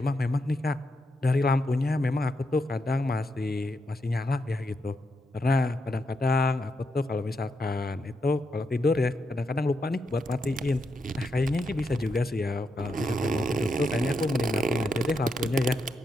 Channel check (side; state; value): both; normal; correlation 0.82